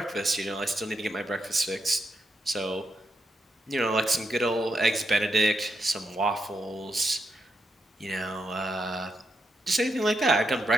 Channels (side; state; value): both; normal; correlation 0.83